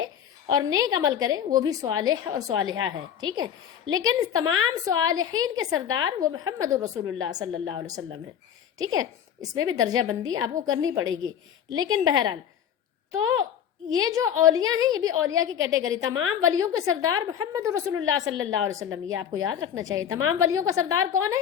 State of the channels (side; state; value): right; quieter; 9.0 dB